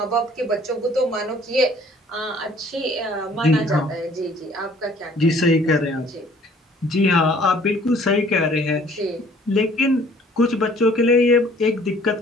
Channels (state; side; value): normal; both; correlation 0.56